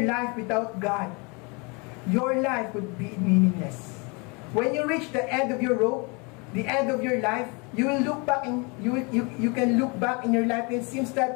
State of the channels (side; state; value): right; quieter; 30.7 dB